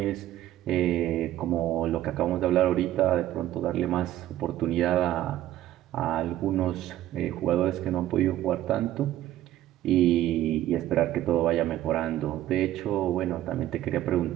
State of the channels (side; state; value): left; quieter; 13.4 dB